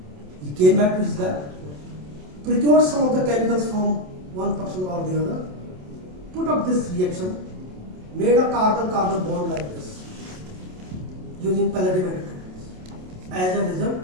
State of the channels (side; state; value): left; late; 27 ms